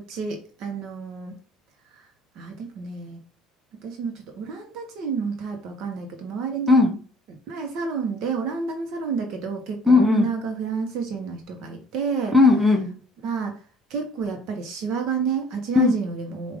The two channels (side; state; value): both; normal; correlation 0.55